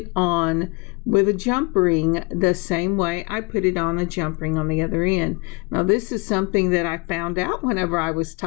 on with a jump ring the same way I put it on a jump ring on the other end. Now, this is something that I found out whenever I was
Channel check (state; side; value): quieter; right; 27.3 dB